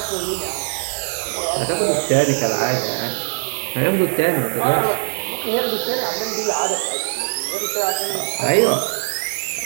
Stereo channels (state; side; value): silent; left; digital silence